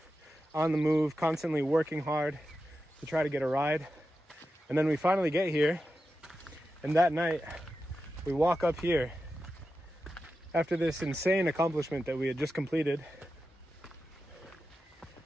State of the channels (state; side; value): normal; both; correlation 0.90